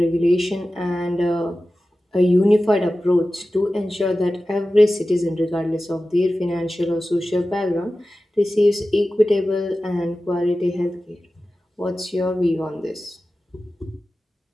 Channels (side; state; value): both; normal; correlation 0.95